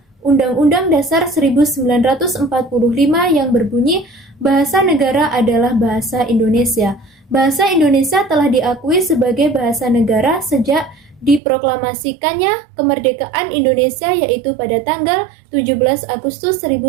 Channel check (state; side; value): drops out; left; at 11.4 s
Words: Undang-Undang Dasar 1945 yang berbunyi, bahasa negara adalah bahasa Indonesia. Bahasa Indonesia telah diakui sebagai bahasa negara sejak diproklamasikannya kemerdekaan Indonesia, yaitu pada tanggal 17 Agustus